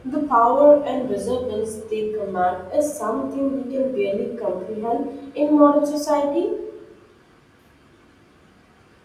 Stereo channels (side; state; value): both; identical; correlation 1.00